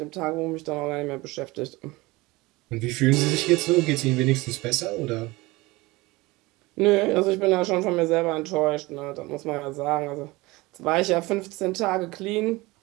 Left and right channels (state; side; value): quieter; left; 21.9 dB